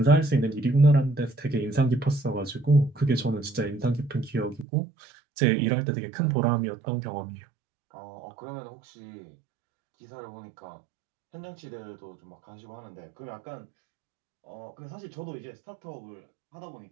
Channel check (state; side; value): drops out; left; at 4.7 s